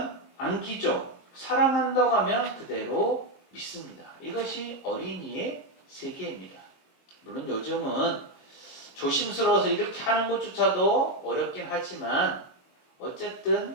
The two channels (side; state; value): right; late; 22 ms